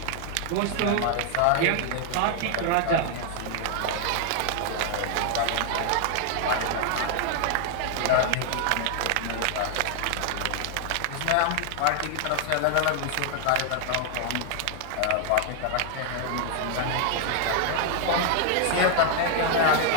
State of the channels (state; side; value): different; both; correlation 0.00